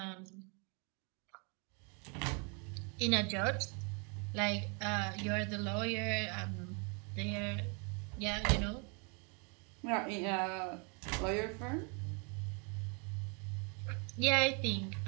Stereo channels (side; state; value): left; quieter; 34.9 dB